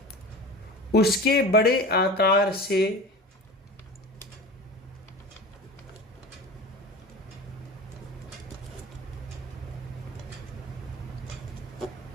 उसके बड़े आकार से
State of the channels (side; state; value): both; normal; correlation 0.33